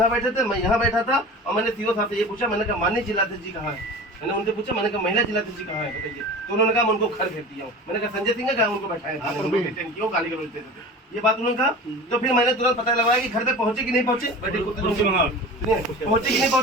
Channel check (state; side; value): normal; both; correlation 0.35